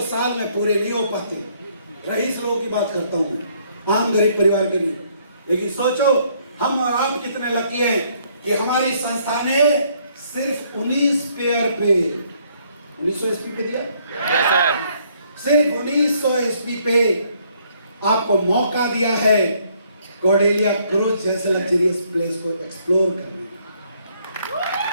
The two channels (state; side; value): inverted; both; correlation -0.67